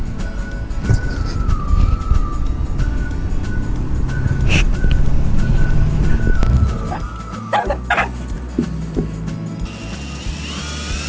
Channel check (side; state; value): both; identical; correlation 1.00